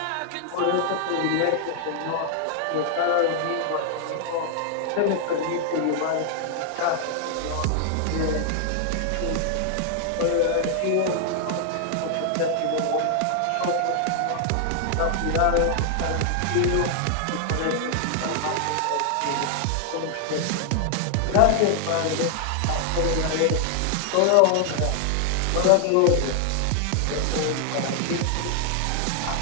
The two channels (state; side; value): different; both; correlation 0.00